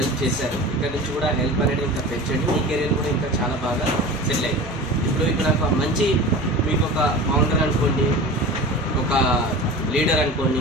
చేశారు. ఇక్కడ నుంచి కూడా హెల్ప్ అనేది ఇంకా పెంచండి, మీ కెరీర్ కూడా ఇంకా చాలా బాగా సెటిల్ అవుతుంది. ఇప్పుడు ఇక్కడ ఒక మంచి మీకు ఒక ఫౌండర్ అనుకోండి, ఒక లీడర్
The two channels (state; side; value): normal; both; correlation 0.34